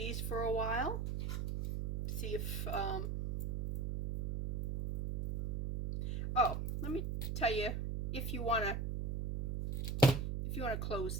for a while. See if, oh, let me tell you, if you want to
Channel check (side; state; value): right; noise; hum, 1 dB below the sound